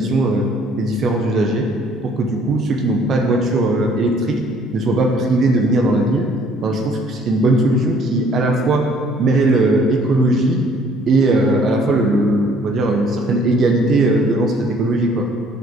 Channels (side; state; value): both; normal; correlation 0.59